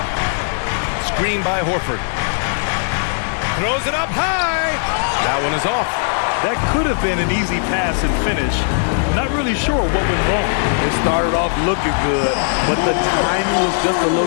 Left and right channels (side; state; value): right; silent; 67 dB below the other